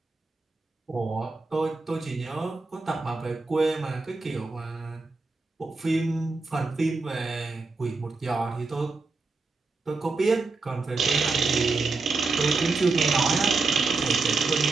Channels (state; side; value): quieter; left; 3.9 dB